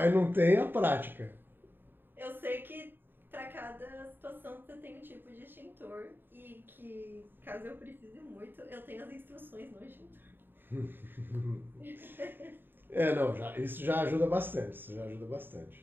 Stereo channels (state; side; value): late; left; 0.096 ms